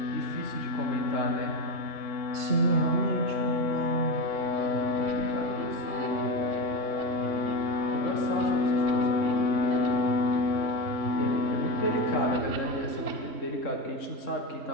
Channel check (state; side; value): late; right; 3.6 ms